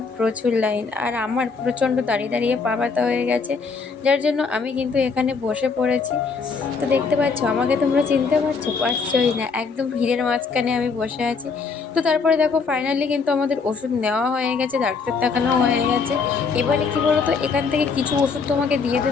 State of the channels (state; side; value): quieter; right; 5.0 dB